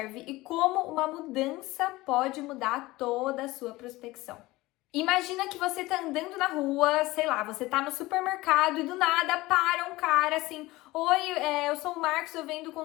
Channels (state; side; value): quieter; right; 19.6 dB